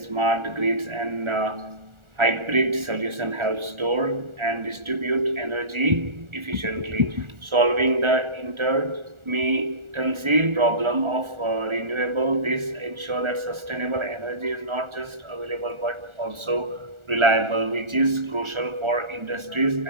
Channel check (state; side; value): late; left; 1.4 ms